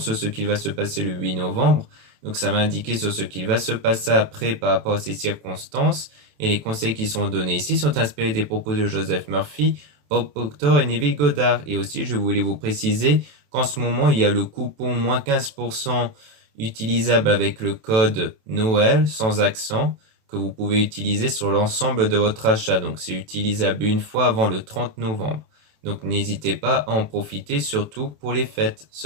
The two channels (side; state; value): left; late; 27 ms